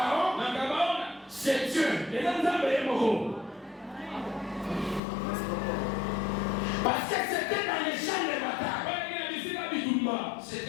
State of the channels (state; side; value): drops out; right; at 5.0 s